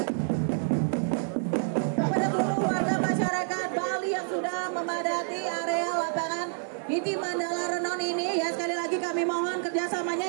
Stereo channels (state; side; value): silent; left; 59 dB below the other